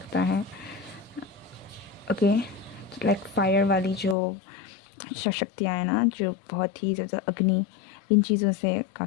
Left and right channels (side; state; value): right; drops out; at 4.2 s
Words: है। ओके, लाइक फायर वाली जो शक्तियाँ हैं ना, जो बहुत ही ज़्यादा अग्नि, इन चीज़ों से